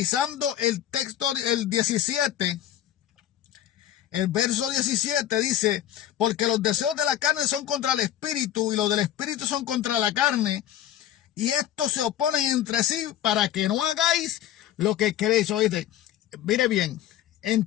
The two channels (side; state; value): right; quieter; 11.9 dB